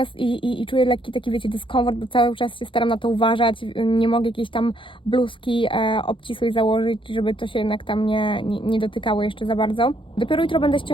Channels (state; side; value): late; right; 0.25 ms